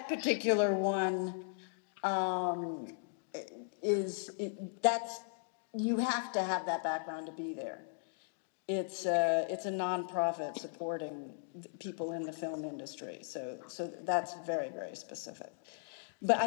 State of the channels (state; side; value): silent; right; digital silence